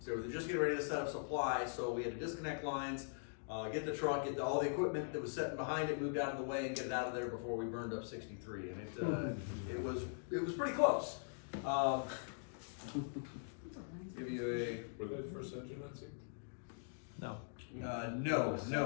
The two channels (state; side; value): silent; right; digital silence